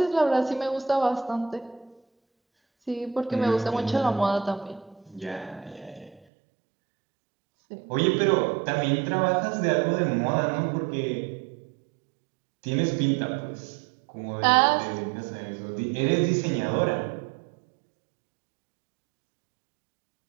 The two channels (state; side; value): drops out; left; at 6.2 s